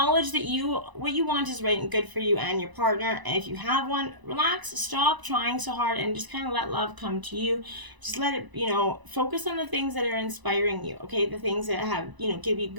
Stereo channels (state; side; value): late; left; 1.0 ms